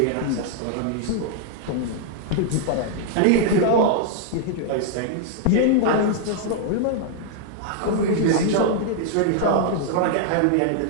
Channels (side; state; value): both; different; correlation -0.01